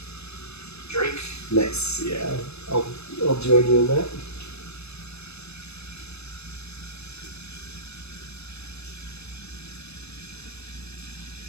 Drink. Nice. Yeah. I'll join you in that.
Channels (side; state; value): right; late; 0.80 ms